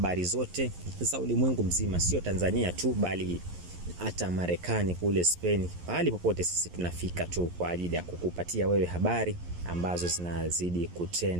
zote za ulimwengu mzima, sio Tanzania tu bali hata Marekani, kule Spain, pahali popote sisi tunafika tu kwa ajili ya kukupatia wewe habari ambazo zinazidi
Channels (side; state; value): left; late; 11 ms